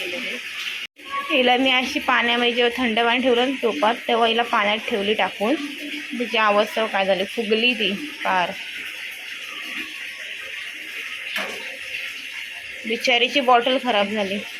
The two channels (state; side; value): identical; both; correlation 1.00